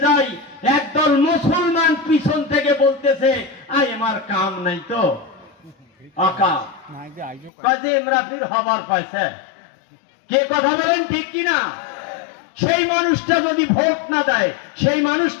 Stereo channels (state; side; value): drops out; right; at 7.5 s